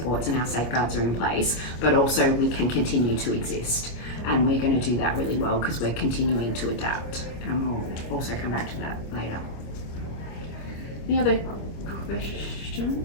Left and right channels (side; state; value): right; late; 25 ms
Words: and our safeguards are in place, but also we can continue to exist. And we're going to do that really well because we're continuing to adapt. And we'll also come back to that later. Any other